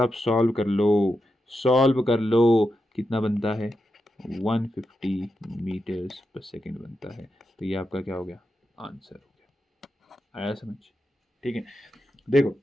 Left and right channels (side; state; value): both; normal; correlation 0.87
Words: सॉल्व कर लो कितना बनता है, 150 मीटर्स पर सेकेंड बनता है। तो ये आपका क्या हो गया, आंसर हो गया। आया समझ, ठीक है। देखो,